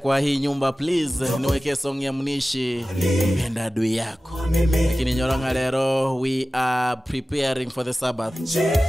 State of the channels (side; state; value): both; normal; correlation 0.96